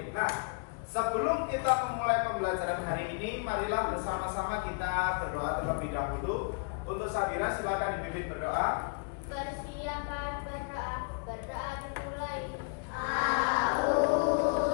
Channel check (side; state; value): right; quieter; 35.8 dB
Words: Nah, sebelum kita memulai pembelajaran hari ini, marilah bersama-sama kita berdoa terlebih dahulu. Untuk Sabira, silakan dipimpin berdoa. Persilakan berdoa dimulai.